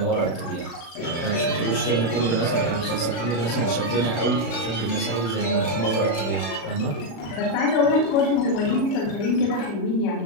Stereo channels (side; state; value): right; late; 36 ms